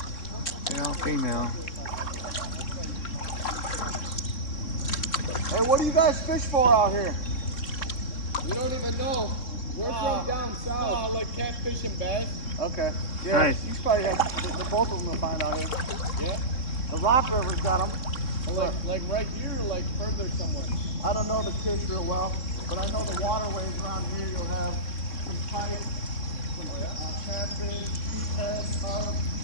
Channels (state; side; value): late; right; 3.6 ms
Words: They're all female. Hey, what do you guys fish for out here? We don't even know. We're from down south. Like catfish and bass. Okay. Yeah, Nice. you probably have both of them to find out here. Yeah. The Rock River's got them. Like right here, or like further somewhere. I don't know the fish real well, but I know the waterways around here. You'll have some pike, some catfish, sheephead, carp,